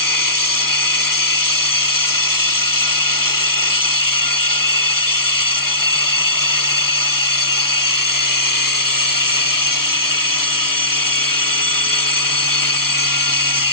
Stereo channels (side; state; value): right; late; 0.93 ms